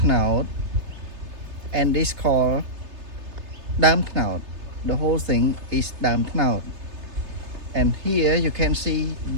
knout, and this called dam knout. The whole thing is dam knout. And here you can see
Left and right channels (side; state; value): left; late; 3.3 ms